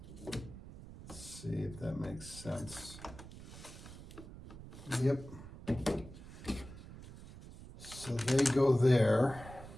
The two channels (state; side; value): noise; right; rumble, 15 dB below the sound